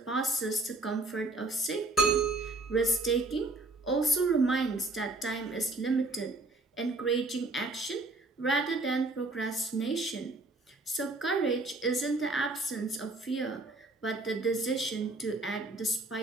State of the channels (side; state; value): left; quieter; 3.1 dB